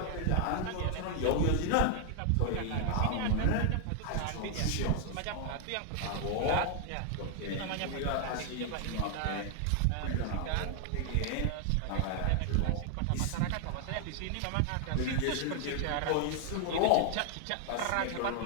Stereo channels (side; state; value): both; different; correlation 0.00